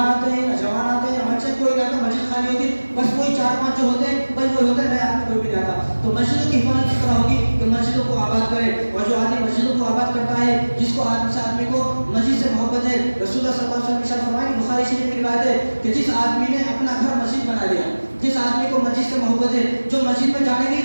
آتے ہیں, نہ جوان آتے ہیں, بچے کوئی نہیں آتا, مسجد خالی ہوتی, بس وہی 4-5 جو ہوتے ہیں بس وہی ہوتا ہے, نئے آدمی کوئی بھی نہیں آتا. تو مسجدوں کی حفاظت کس طرح ہوگی کہ مسجدوں کو آباد کرے, اور جو آدمی مسجدوں کو آباد کرتا ہے, جس کو آدمی کو مسجد سے محبت ہے, رسول اللہ صلی اللہ علیہ وسلم ارشاد فرمائے, بخاری شریف کی روایت ہے کہ جس آدمی نے اپنا گھر مسجد بنا لیا, جس آدمی کو مسجد سے محبت ہے, جو مسجد میں جانے کے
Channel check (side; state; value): both; inverted; correlation -1.00